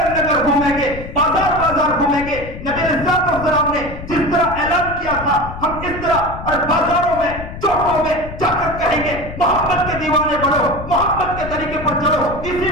نگر گھومیں گے، بازار بازار گھومیں گے۔ نبی علیہ السلام نے جس طرح اعلان کیا تھا ہم اس طرح اور بازاروں میں چوکوں میں جا کر کہیں گے محبت کے دیوانے بڑھو، محبت کے طریقے پر چلو، اسی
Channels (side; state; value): left; noise; rumble, 10 dB below the sound